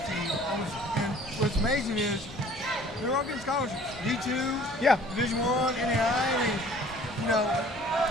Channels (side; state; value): both; normal; correlation 0.51